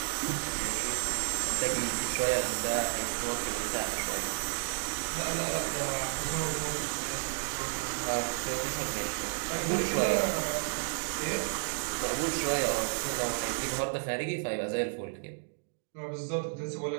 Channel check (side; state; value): left; silent; 56 dB below the other